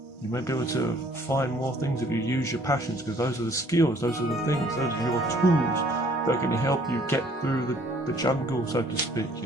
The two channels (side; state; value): both; normal; correlation 0.59